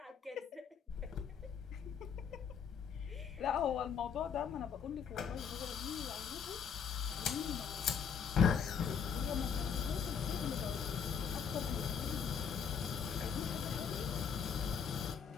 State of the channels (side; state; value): right; quieter; 7.0 dB